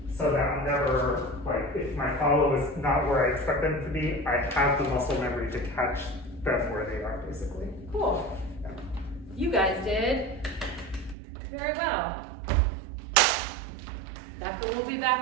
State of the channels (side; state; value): left; drops out; at 11.2 s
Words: so that whenever, like, if my follow is not where I expect them to be, I have the muscle memory to catch them where they are, basically. Cool. You guys did very well. Becca will be